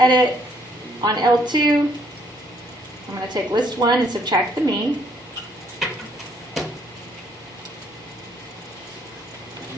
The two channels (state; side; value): normal; both; correlation 0.67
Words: On L2, I'm going to take list 1 and subtract the mean.